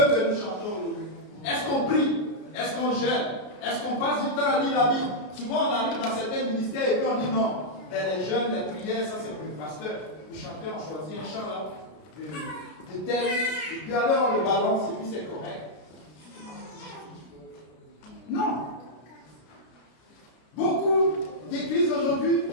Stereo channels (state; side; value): late; right; 33 ms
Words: que nous chantions aujourd'hui. Est-ce qu'on prie? Est-ce qu'on jeûne? Est-ce qu'on passe du temps à lire la Bible? Souvent on arrive dans certains ministères et puis on dit non. Les jeûnes, les prières, ça c'est pour le pasteur. Vous chantez, on choisit un chant là, de tel, et puis alors on le balance et puis c'est correct. Non. Beaucoup d'églises aujourd'hui,